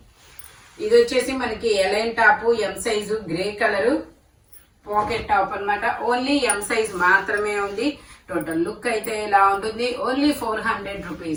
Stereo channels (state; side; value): identical; both; correlation 1.00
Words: ఇది వచ్చేసి మనకి A line top, M size, grey colour pocket top అన్నమాట. ఓన్లీ ఎం సైజ్ మాత్రమే ఉంది. టోటల్ లుక్ అయితే ఇలా ఉంటుంది. ఓన్లీ 400